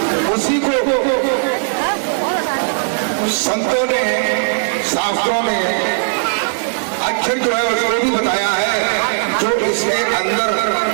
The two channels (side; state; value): left; silent; 68 dB below the other